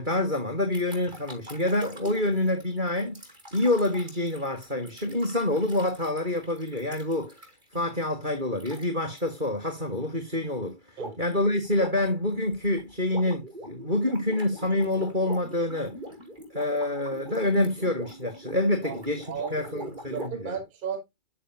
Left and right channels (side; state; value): left; late; 2.3 ms